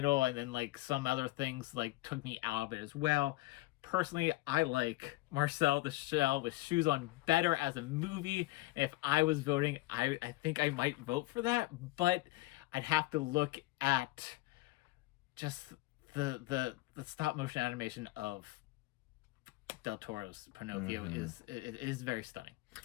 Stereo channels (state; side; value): quieter; right; 19.8 dB